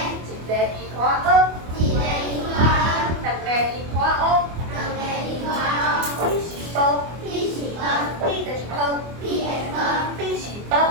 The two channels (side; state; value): left; late; 24 ms